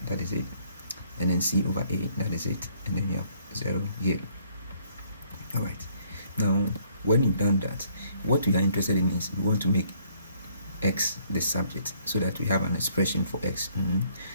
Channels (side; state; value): both; inverted; correlation -0.65